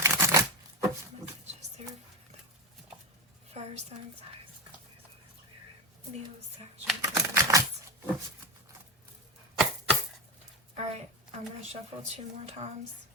Messages there for the fire signs, Leo, Sagittarius. Alright, I'm going to shuffle 2 more times.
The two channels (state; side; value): normal; both; correlation 0.17